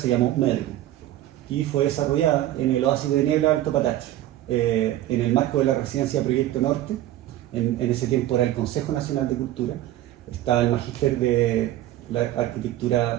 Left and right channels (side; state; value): left; quieter; 14.0 dB